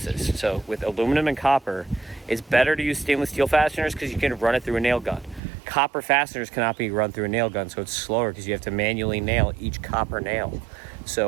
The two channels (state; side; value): drops out; left; at 5.4 s